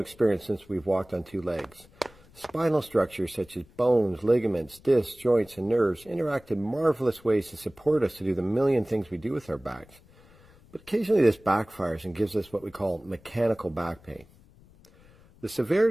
since we've walked on two legs. Spinal structures such as bones, ligaments, discs, joints, and nerves interact in marvelous ways to support us to do the million things we do with our backs. But occasionally this backfires and gives us what we call mechanical back pain. The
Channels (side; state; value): left; noise; rumble, 26 dB below the sound